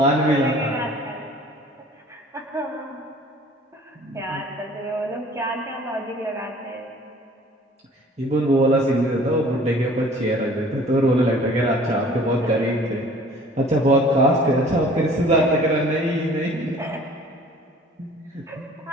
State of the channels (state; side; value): normal; both; correlation 0.50